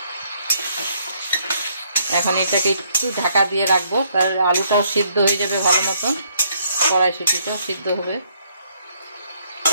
এখন এটাকে একটু ঢাকা দিয়ে রাখবো, তার আলুটাও সিদ্ধ হয়ে যাবে ভালো মতন, কড়াইশুঁটিটাও সিদ্ধ হবে।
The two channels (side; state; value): both; inverted; correlation -0.70